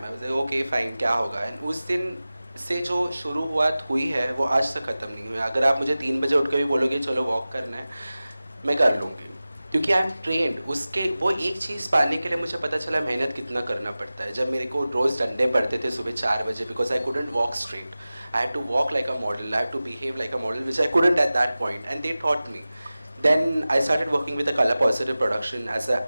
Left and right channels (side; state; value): both; inverted; correlation -0.97